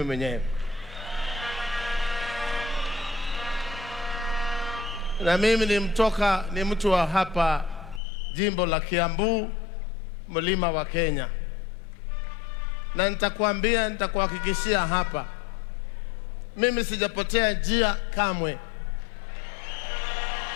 mwenyewe. Na mimi ni mtu wa hapa jimbo la Kiambu, mlima wa Kenya. Na nitakuhakikishia hapa, mimi sijapotea njia kamwe.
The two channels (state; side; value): drops out; right; at 8.0 s